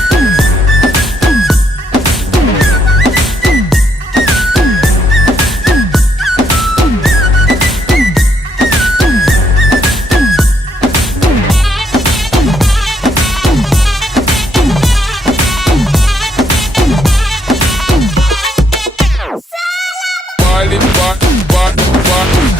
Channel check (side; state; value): both; normal; correlation 0.73